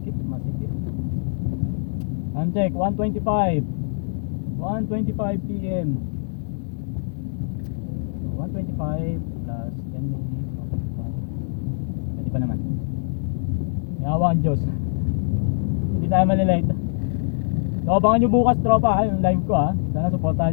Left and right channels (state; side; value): silent; right; digital silence